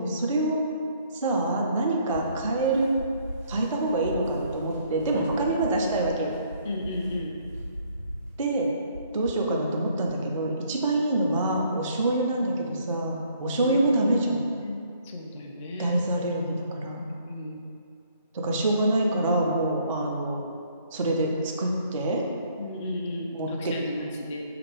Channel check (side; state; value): both; inverted; correlation -0.64